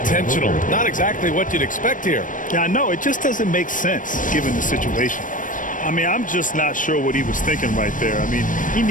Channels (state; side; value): late; right; 0.38 ms